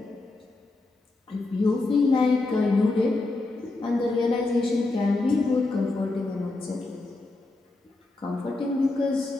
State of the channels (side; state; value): right; quieter; 3.2 dB